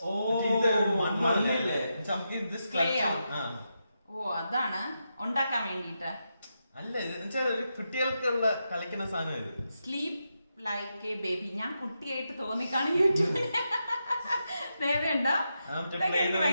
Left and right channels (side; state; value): both; inverted; correlation -0.86